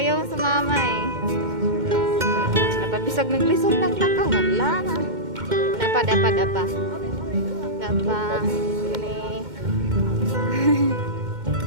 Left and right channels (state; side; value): late; left; 2.1 ms